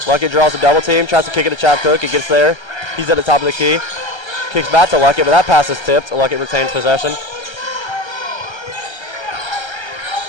Luckett draws a double team, tries to kick it to Chap Cook. It gets there. He's at the top of the key. Kicks back to Luckett, but that pass is tipped. Luckett retains possession.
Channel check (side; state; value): right; late; 1.3 ms